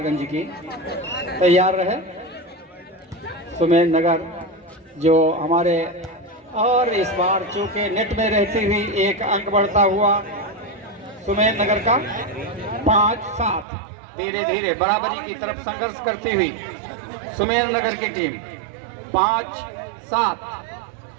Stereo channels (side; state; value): left; drops out; at 13.7 s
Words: की। तैयार रहे सुमेर नगर जो हमारे, और इस बार चूंकि नेट में रहती हुई एक अंक बढ़ता हुआ सुमेर नगर का 5-7, धीरे धीरे बराबरी की तरफ संघर्ष करती हुई सुमेर नगर की टीम 5-7।